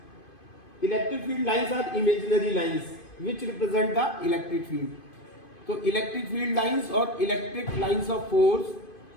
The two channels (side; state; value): right; late; 2.5 ms